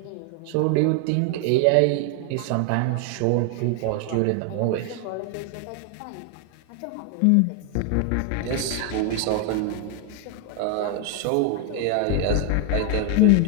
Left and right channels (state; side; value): different; both; correlation 0.01